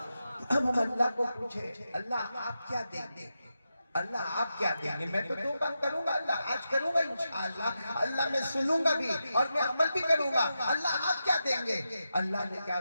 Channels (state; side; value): inverted; both; correlation -0.89